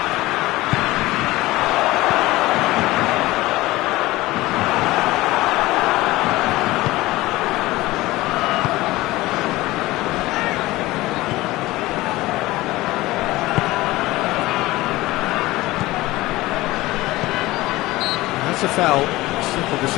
That's a foul. Simple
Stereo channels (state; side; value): quieter; right; 18.7 dB